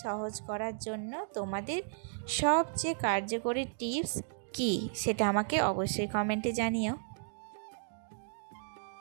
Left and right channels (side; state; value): left; silent; digital silence